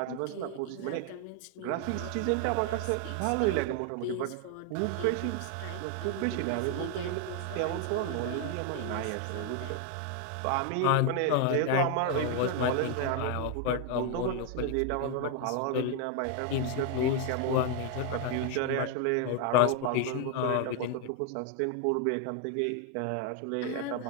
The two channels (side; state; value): both; different; correlation 0.00